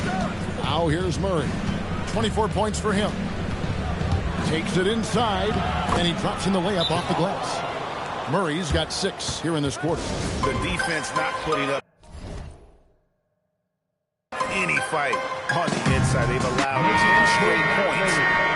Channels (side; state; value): both; identical; correlation 1.00